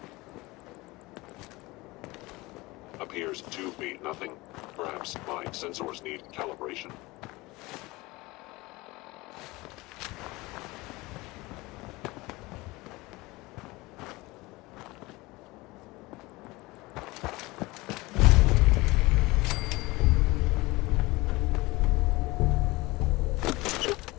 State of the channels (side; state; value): right; quieter; 21.8 dB